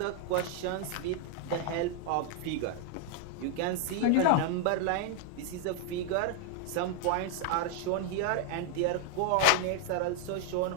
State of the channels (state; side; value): different; both; correlation 0.00